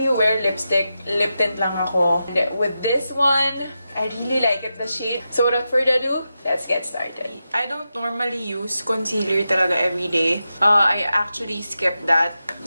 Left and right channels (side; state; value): both; inverted; correlation -0.89